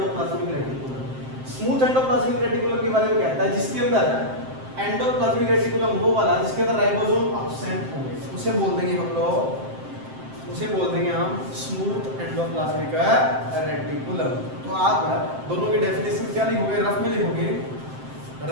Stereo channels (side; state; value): left; late; 7.7 ms